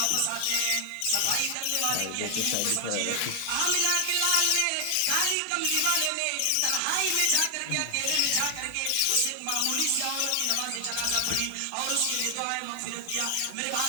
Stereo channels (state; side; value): different; both; correlation 0.00